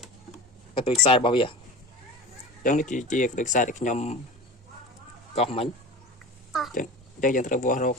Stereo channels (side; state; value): both; normal; correlation 0.33